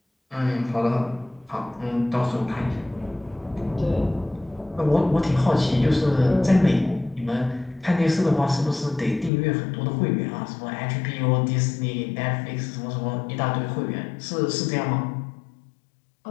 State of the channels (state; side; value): drops out; right; at 9.3 s